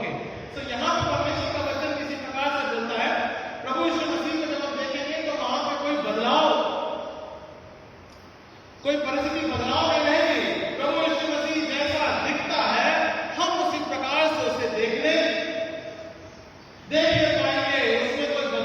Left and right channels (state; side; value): identical; both; correlation 1.00